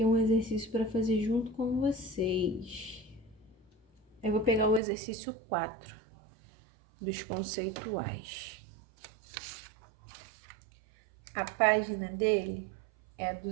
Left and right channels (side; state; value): left; drops out; at 4.8 s